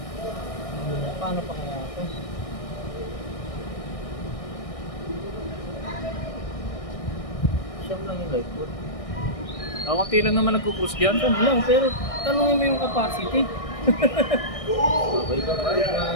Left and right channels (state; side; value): late; right; 1.6 ms